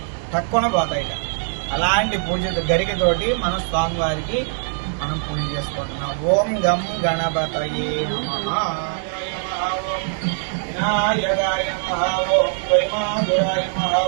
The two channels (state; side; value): silent; left; 64 dB below the other